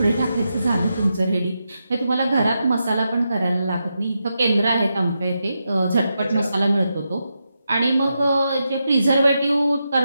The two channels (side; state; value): both; inverted; correlation -0.86